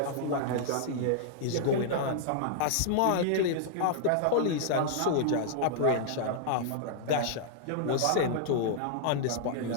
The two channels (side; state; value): both; different; correlation -0.01